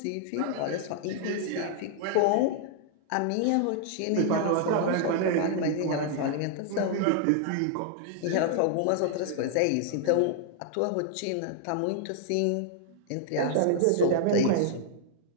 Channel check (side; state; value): both; different; correlation -0.01